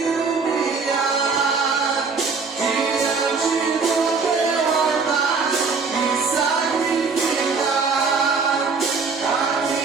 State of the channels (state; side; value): quieter; left; 4.8 dB